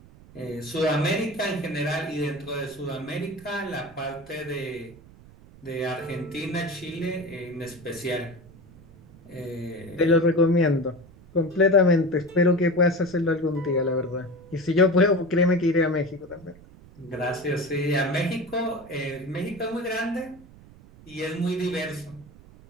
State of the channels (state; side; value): noise; right; rumble, 22 dB below the sound